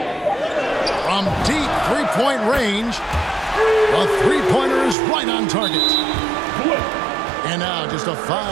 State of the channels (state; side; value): drops out; left; at 5.0 s